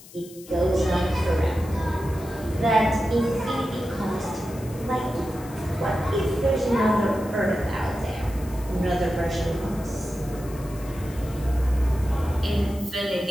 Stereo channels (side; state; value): left; noise; hiss, 20 dB below the sound